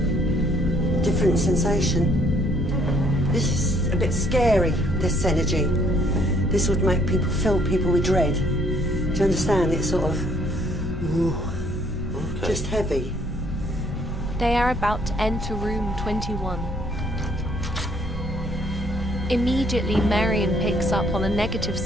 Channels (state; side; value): normal; both; correlation 0.64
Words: Different sensation. This is a bit scary, this energy. This would make people fill people with dread. Do you understand? It's sort of just heavy. They are about to enter room 21. Immediately, Marion picks up on a negative